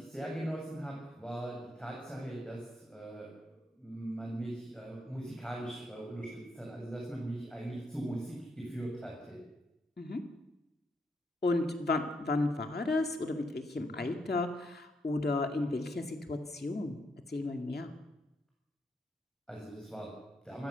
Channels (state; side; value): normal; both; correlation 0.77